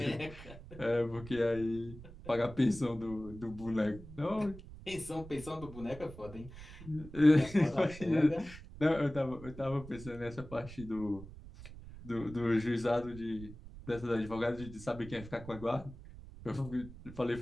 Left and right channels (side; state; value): right; noise; rumble, 15 dB below the sound